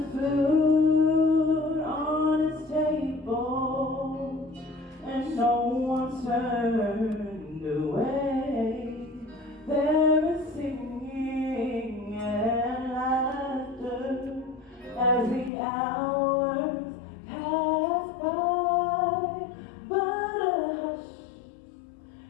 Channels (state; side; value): drops out; right; at 15.5 s